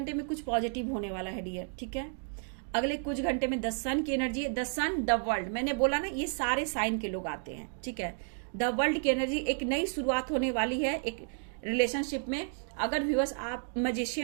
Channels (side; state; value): left; silent; 56 dB below the other